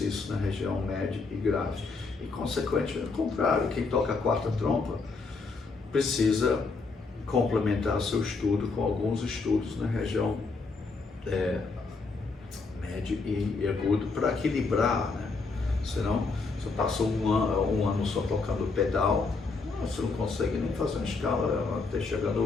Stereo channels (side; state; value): right; quieter; 4.1 dB